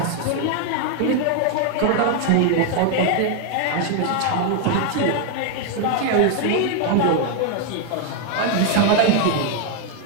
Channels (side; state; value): both; different; correlation 0.00